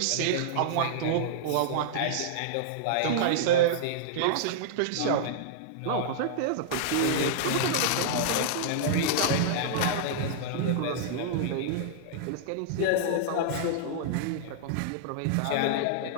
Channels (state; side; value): different; both; correlation -0.02